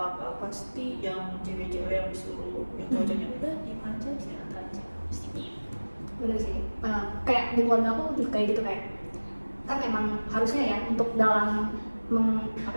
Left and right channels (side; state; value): both; inverted; correlation -1.00